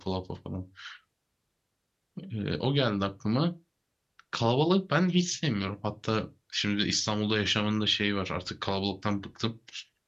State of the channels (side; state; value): both; identical; correlation 1.00